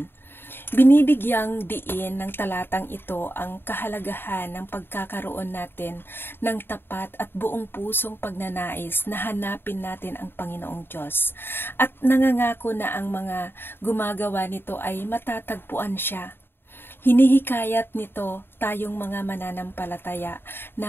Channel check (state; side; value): late; right; 0.10 ms